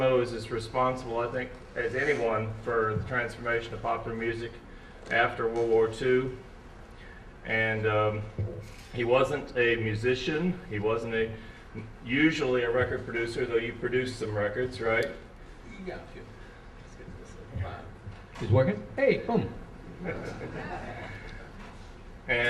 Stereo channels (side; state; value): both; identical; correlation 1.00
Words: is as responsible, I think, as anyone for the transformation of popular music after World War II. And he wasn't a musician. He wasn't usually a record producer, though you produced some records, right? Yeah, sure. It's working? Hey, boom.